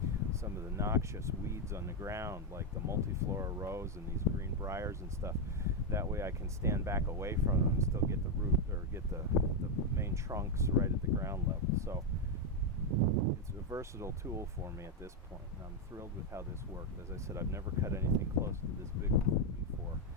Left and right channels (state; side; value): normal; both; correlation 0.03